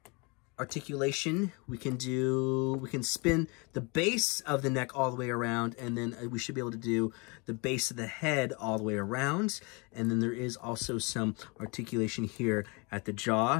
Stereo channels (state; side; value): quieter; right; 29.7 dB